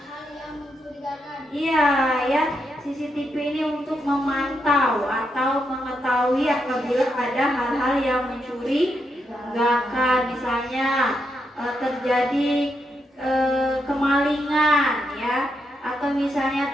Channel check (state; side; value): normal; both; correlation 0.82